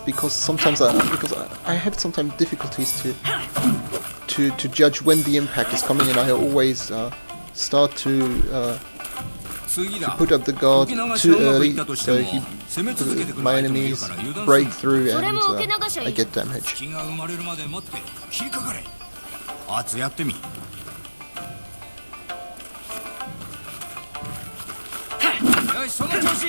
sometimes I have sometimes difficulties to judge when the impact is coming, and I always start to put up the guard too early, so my enemies break through and I get damage. 隙が生まれるまで待って切りかかれ。アツやってみ。よしその調子。よ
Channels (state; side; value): inverted; both; correlation -1.00